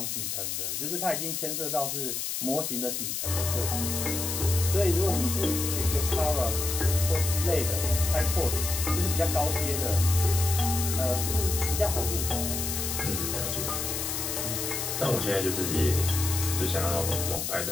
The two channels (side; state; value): left; noise; hiss, 2 dB below the sound